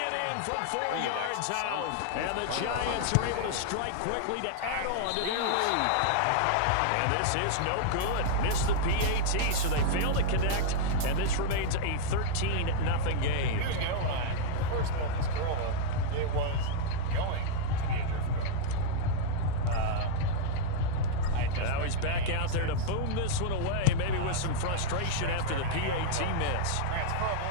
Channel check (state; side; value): different; both; correlation -0.01